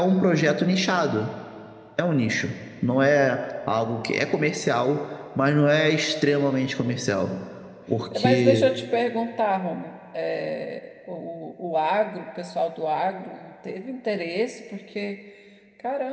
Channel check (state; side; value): identical; both; correlation 1.00